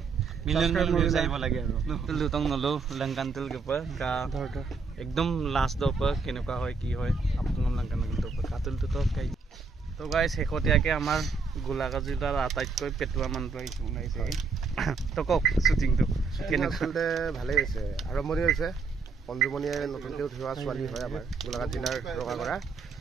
million views ayibo lage aro lutong nolo langkan tul ke pa ka ekdom last do pa kenuka hoy ki hoy apun langkan to pa katul to kai তো guys হেকটিয়াকে আমাৰ গোলাগাজিলাৰ আটাইতকৈ পেটুৱা মানুহটো আহিছে ওলাইছে তো কক শুটিংটো কেনেকৈ আচলতে ভালেই হৈছে আৰম্ভণি হৈছে পঞ্জুমণিয়ে নতুনকৈ উঠোৱা ছোৱালী হয় আমাৰ গোলাঘাট জিলাৰ ৰঙাগড়া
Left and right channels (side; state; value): left; quieter; 4.7 dB